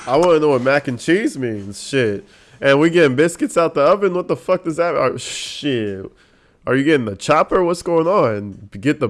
I want to know what mac and cheese means. Shit. And we getting biscuits out the oven? What the fuck does that? Shit. Are you getting the chopper? What's going on? Get the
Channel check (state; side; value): identical; both; correlation 1.00